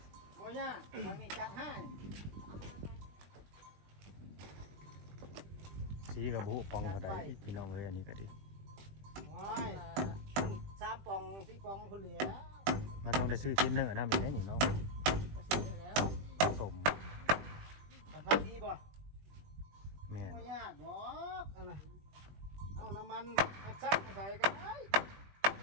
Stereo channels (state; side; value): late; left; 20 ms